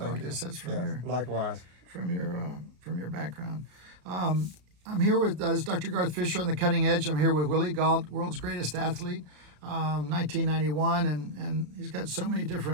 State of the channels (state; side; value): late; left; 33 ms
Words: I guess that's from your likewise. from your background. I'm here with Dr. Garth Fisher on the Cutting Edge. I'm here with Willi Gault, world's greatest athlete, 1991, and he's got so many